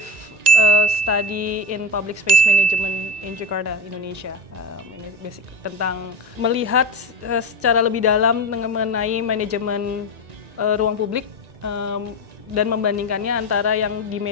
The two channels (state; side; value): late; left; 1.9 ms